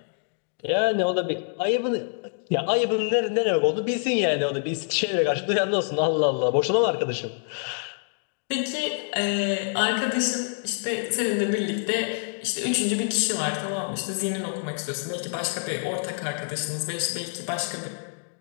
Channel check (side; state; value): right; silent; 61 dB below the other